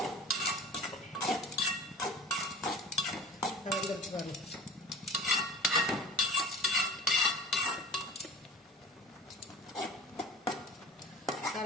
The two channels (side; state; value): both; normal; correlation 0.40